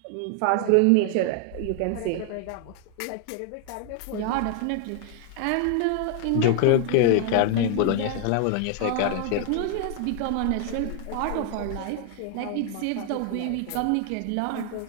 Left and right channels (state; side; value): different; both; correlation 0.00